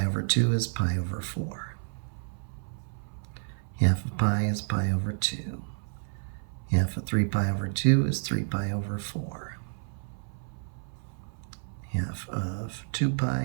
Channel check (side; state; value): left; silent; 58 dB below the other